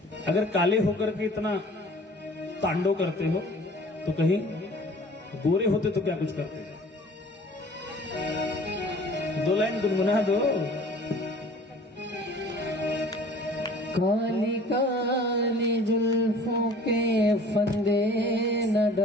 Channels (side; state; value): both; normal; correlation 0.48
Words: अगर काले होकर के इतना तांडव करते हो तो कहीं गोरे होते तो क्या कुछ करते? दो लाइन गुनगुना दो। काली काली जुल्फों के फंदे न